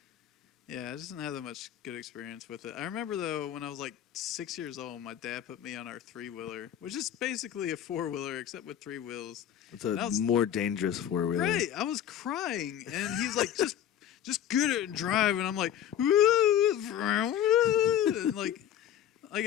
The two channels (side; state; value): right; quieter; 10.4 dB